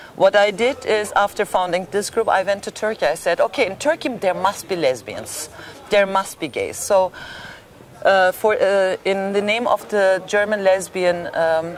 What I did is, after founding this group, I went to Turkey. I said, okay, in Turkey there must be lesbians, there must be gays. So in the name of the German Lesbian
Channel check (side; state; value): both; identical; correlation 1.00